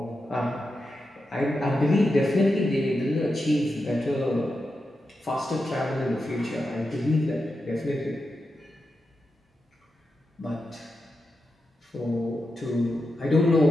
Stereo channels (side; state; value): both; normal; correlation 0.88